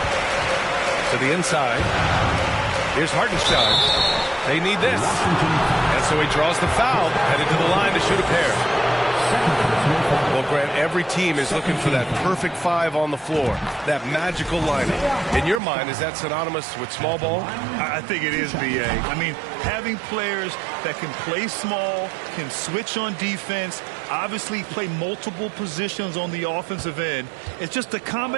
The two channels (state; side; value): drops out; left; at 15.6 s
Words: To the inside. Here's Hartenstein. They need this. And so he draws the foul, headed to the line to shoot a pair. Well, Grant, every team is looking for that perfect 5 on the floor, that magical lineup. In your mind, is that synonymous with small ball? I think it is, B.A. I mean, having players that can play small, can switch on defense, obviously play multiple positions on the offensive end. It's just a